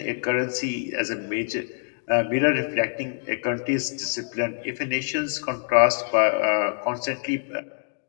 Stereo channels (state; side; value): silent; right; digital silence